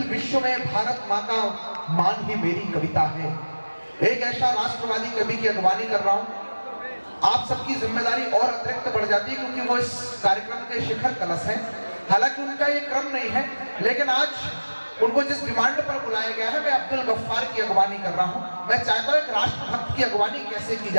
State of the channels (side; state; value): both; inverted; correlation -1.00